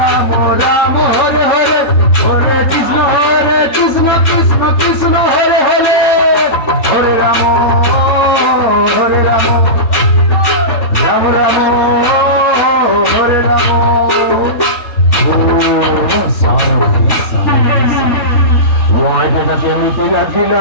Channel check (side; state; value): right; late; 4.2 ms